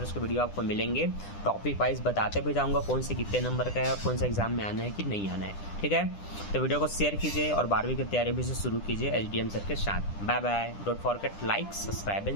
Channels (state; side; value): late; right; 10 ms